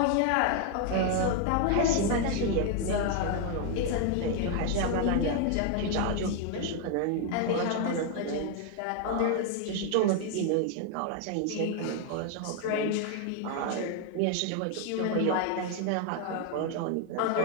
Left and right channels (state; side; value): different; both; correlation 0.01